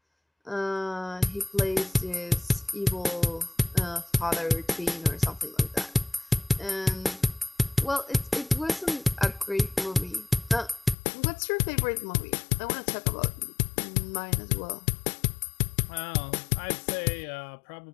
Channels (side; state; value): right; drops out; at 11.0 s